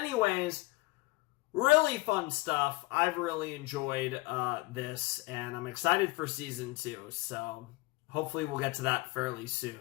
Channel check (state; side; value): quieter; right; 23.2 dB